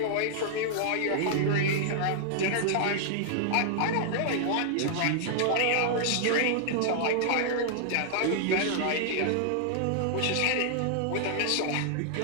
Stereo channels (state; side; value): different; both; correlation -0.01